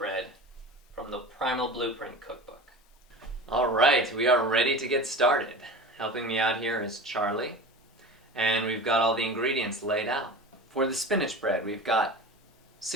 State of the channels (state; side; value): normal; both; correlation 0.33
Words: from the Primal Blueprint cookbook. Alright, we are ready to get started. Helping me out here is Charlie, and we've got all the ingredients laid out. For the spinach bread, we've got